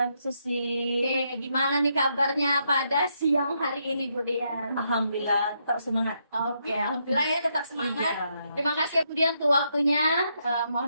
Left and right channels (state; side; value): inverted; both; correlation -0.78